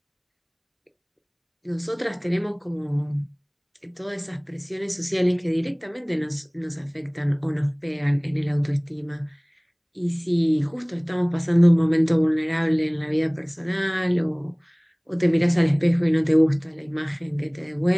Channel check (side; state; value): both; identical; correlation 1.00